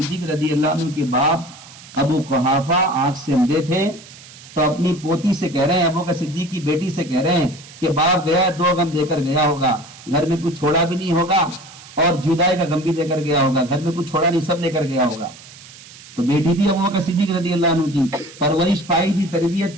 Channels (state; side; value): noise; right; hiss, 19 dB below the sound